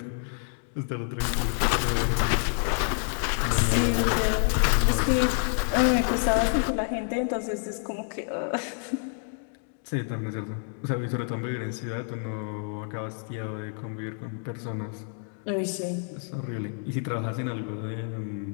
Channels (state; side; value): silent; right; 59 dB below the other